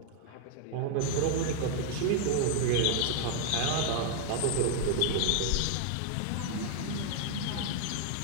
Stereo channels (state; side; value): different; both; correlation 0.00